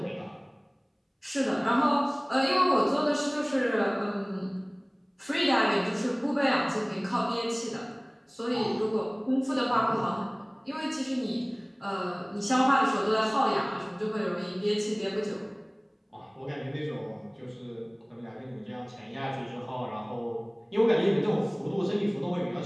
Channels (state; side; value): identical; both; correlation 1.00